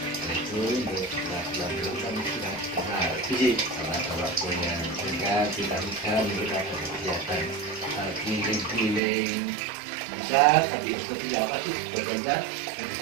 Itu setelah tidur kami sudah kenal. Sholat punya sehingga kita kegiatan keliling. Bisa tapi seperti apa sih sebetulnya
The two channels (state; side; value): drops out; left; at 9.0 s